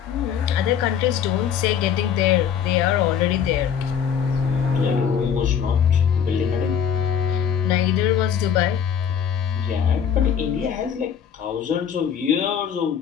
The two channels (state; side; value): quieter; right; 8.0 dB